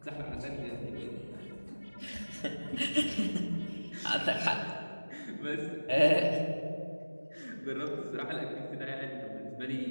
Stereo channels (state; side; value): inverted; both; correlation -1.00